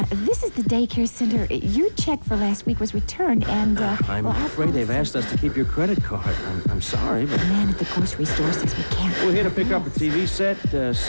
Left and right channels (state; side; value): inverted; both; correlation -1.00